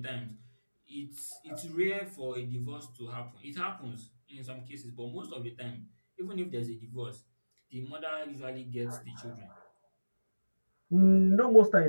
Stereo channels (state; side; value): inverted; both; correlation -1.00